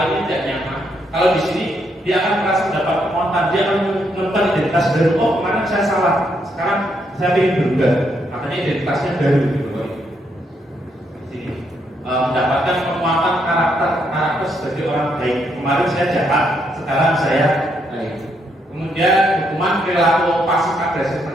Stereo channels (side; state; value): both; normal; correlation 0.76